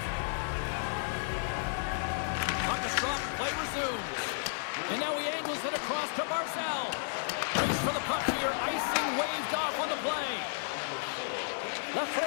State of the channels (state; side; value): silent; right; digital silence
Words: Play resumes. And now he angles it across to Marcel. Race for the puck here. Icing waved off on the play.